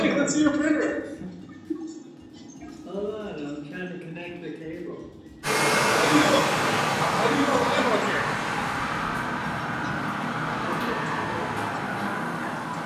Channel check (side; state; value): both; identical; correlation 1.00